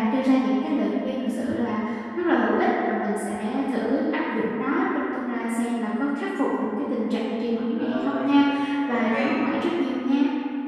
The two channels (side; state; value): both; identical; correlation 1.00